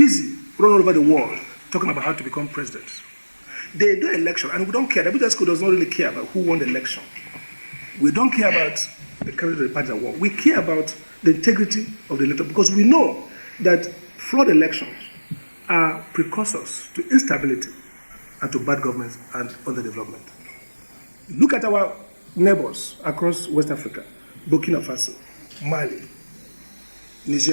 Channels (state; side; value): inverted; both; correlation -1.00